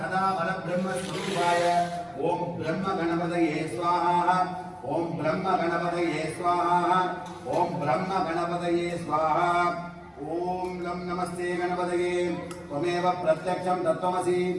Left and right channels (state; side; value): identical; both; correlation 1.00